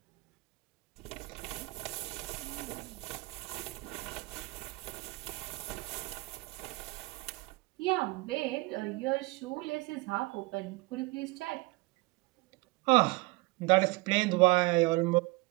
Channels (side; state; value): left; quieter; 24.0 dB